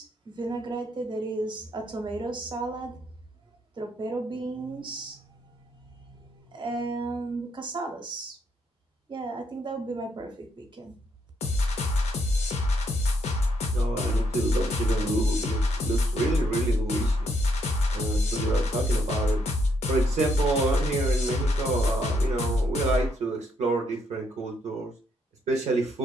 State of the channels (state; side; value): normal; both; correlation 0.73